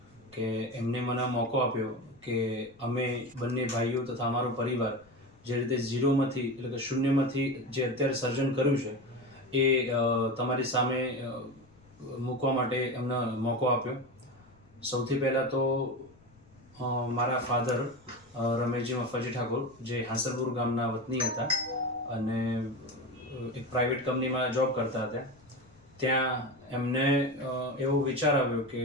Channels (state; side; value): noise; left; rumble, 29 dB below the sound